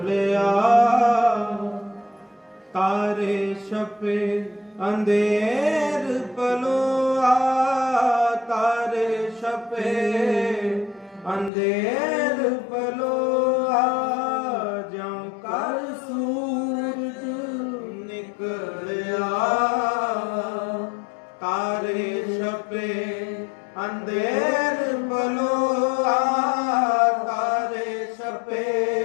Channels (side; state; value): right; drops out; at 11.5 s